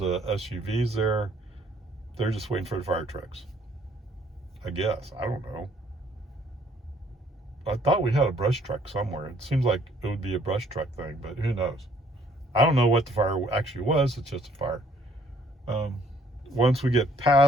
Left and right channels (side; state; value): both; normal; correlation 0.62